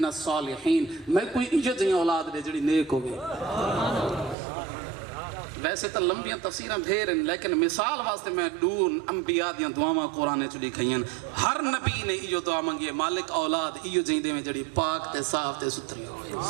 الصالحین، میں کوئی ایجا جہاں اولاد دے جڑی نیک ہوگی۔ ویسے تو لمبیاں تفسیریں دھیر ہیں لیکن مثال واسطے میں دون انبیاء دیاں دعاواں قرآن چڑی کھئیں، ہر نبی نے ایو دعا منگی ہے مالک اولاد ایو جہاں دے میں جڑی پاک تے صاف تے ستھری ہوئے۔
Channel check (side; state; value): left; drops out; at 4.4 s